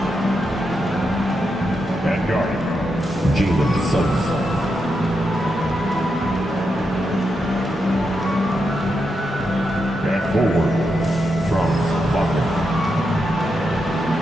At guard, Jalen Suggs. At forward, Franz Wagner.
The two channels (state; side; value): normal; both; correlation 0.84